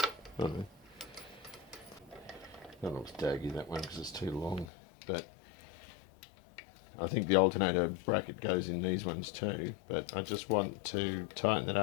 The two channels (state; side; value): drops out; right; at 4.7 s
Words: I don't know. That looks daggy, that one, because it's too long. But I think the alternator bracket goes in these ones too. But I just want to tighten it